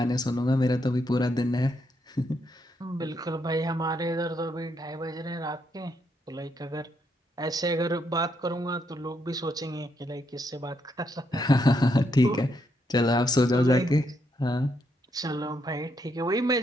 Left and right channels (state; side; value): normal; both; correlation 0.77